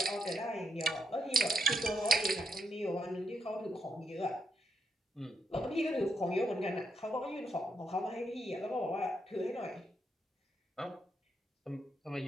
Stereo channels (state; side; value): normal; both; correlation 0.79